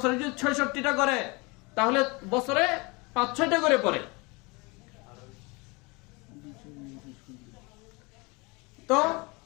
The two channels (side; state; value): right; quieter; 27.1 dB